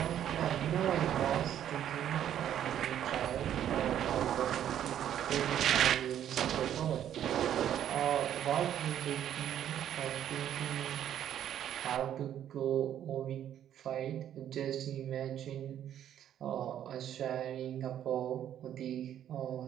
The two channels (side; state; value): left; quieter; 10.5 dB